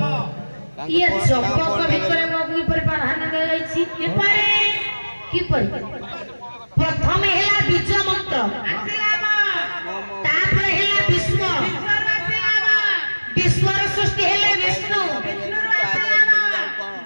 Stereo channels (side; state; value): both; inverted; correlation -1.00